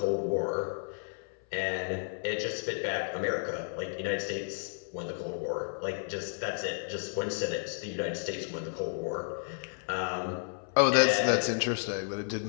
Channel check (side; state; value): right; silent; 56 dB below the other